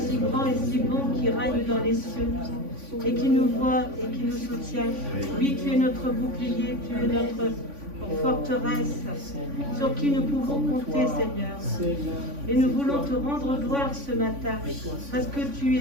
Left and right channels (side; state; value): left; late; 3.5 ms